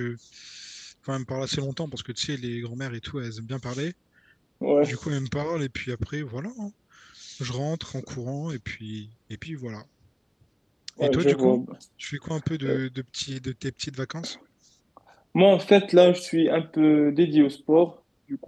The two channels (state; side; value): identical; both; correlation 1.00